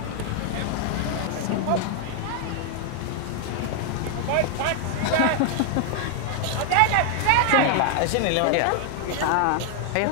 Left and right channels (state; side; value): different; both; correlation 0.00